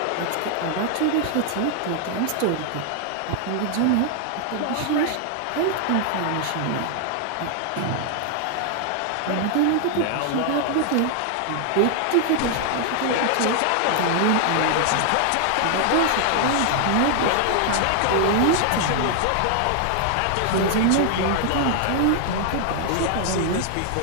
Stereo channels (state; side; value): different; both; correlation 0.00